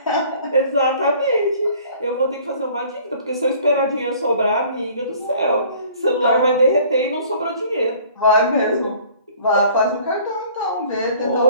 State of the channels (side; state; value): both; inverted; correlation -0.52